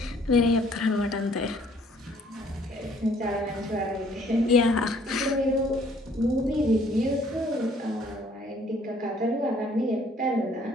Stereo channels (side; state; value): both; normal; correlation 0.60